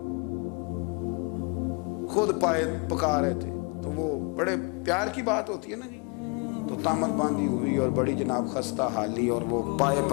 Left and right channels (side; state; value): right; quieter; 31.8 dB